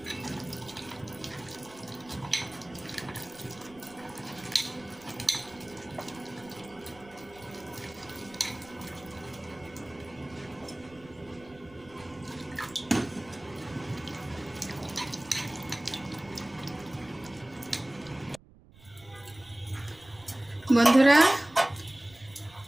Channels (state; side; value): noise; right; rumble, 23 dB below the sound